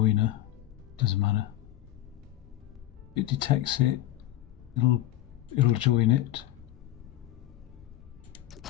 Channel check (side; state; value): right; quieter; 14.1 dB